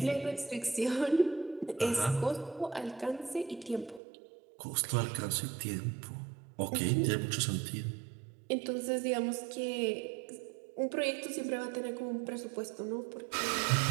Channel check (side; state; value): left; drops out; at 4.0 s